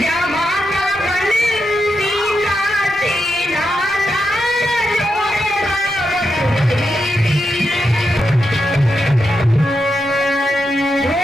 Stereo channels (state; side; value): normal; both; correlation 0.85